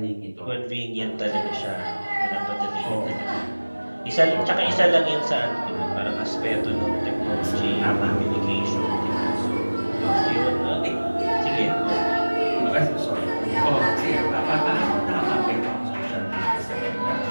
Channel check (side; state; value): both; inverted; correlation -1.00